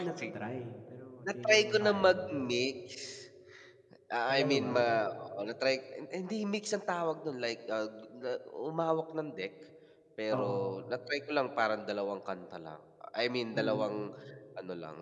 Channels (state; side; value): identical; both; correlation 1.00